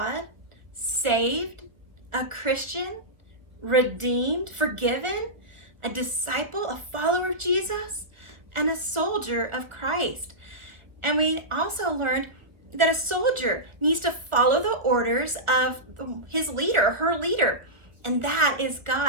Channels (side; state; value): left; late; 1.1 ms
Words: saved, a Christian, redeemed, forgiven, a disciple, a follower of Jesus, and a soldier of Christ. And we also learned that a soldier needs to follow the orders of his leader, her leader, and that is